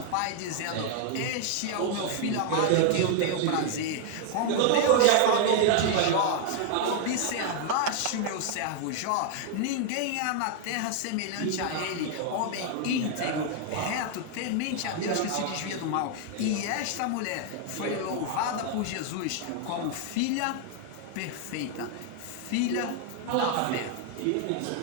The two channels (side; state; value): both; different; correlation 0.00